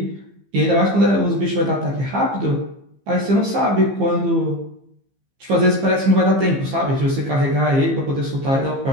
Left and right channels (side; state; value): left; late; 15 ms